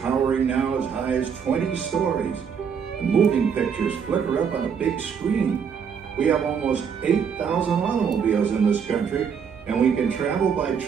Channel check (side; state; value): left; quieter; 6.9 dB